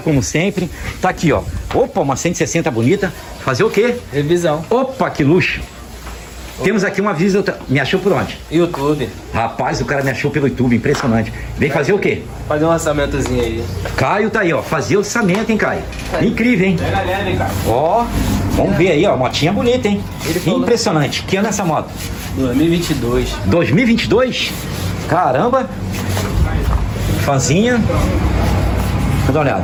como sempre. Tá aqui, ó. Opa, uma 160 bonita. Fazer o quê? Revisão. Opa, que luxo. Temos aqui uma visita. Me achou por onde? YouTube. Rapaz, o cara me achou pelo YouTube, impressionante. Vem fazer o quê? Fazer um orçamentozinho aí. Caio tá aí, ó. Fazer orçamento, hein, Caio? Incrível, hein? Pega leve, cara. Ó, vamos ver aí, ó. Motinha bonita, hein? Impressionante. Que ano é essa moto? 2022. 2022? Caramba. Fanzinha. Vou dar uma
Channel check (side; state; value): both; identical; correlation 1.00